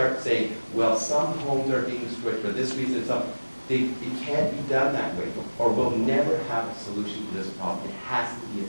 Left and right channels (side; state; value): both; inverted; correlation -1.00